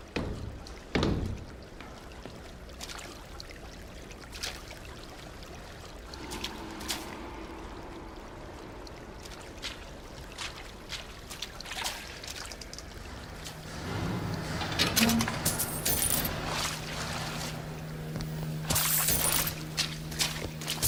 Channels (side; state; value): both; identical; correlation 1.00